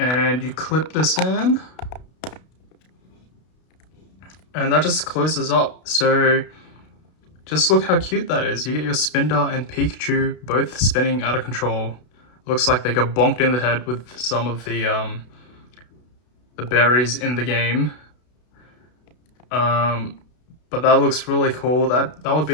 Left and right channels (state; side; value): late; right; 32 ms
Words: you clip this in. And that just closes up. So just look how cute that is. You get your Spinda and Pikachu both spinning out of control. Looks like they got bonked in the head with some of the berries in the game. But that looks really cool. That would